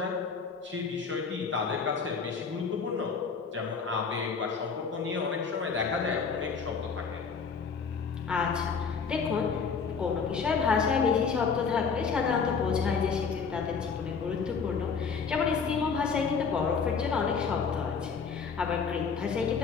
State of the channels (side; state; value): right; quieter; 5.6 dB